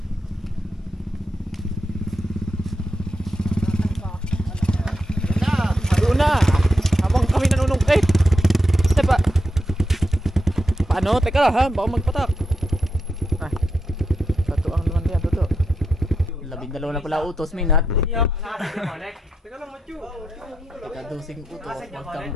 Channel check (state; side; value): normal; both; correlation 0.85